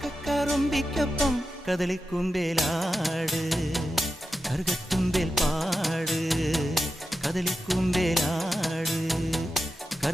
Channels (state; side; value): normal; both; correlation 0.90